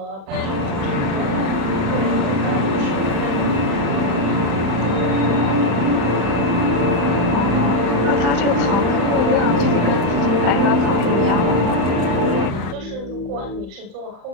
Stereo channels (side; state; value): left; late; 36 ms